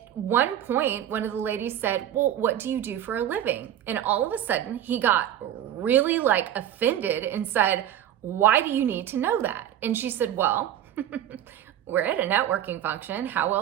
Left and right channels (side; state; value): left; quieter; 11.1 dB